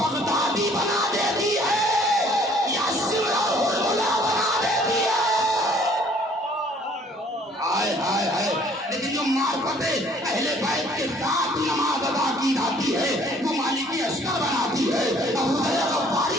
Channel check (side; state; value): both; normal; correlation 0.58